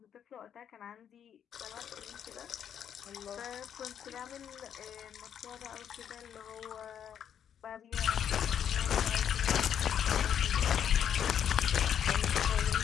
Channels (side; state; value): right; quieter; 8.9 dB